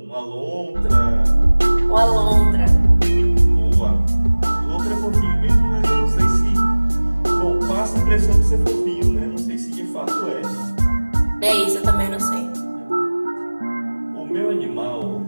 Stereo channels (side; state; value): both; inverted; correlation -1.00